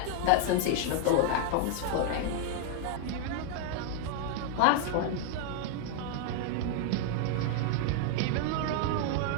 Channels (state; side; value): different; both; correlation 0.00